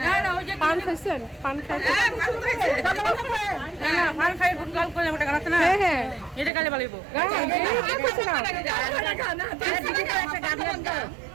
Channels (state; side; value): drops out; left; at 6.5 s